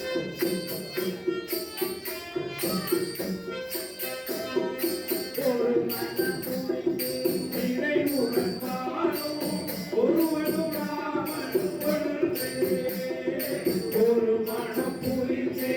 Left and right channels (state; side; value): identical; both; correlation 1.00